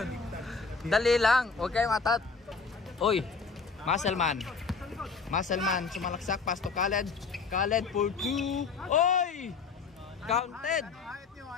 Dali lang, huwag kayong atat. Uy, Muscleman, sumalaksak, pass to Khaled. Khaled for 2. Uy! Counted.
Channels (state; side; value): quieter; right; 4.9 dB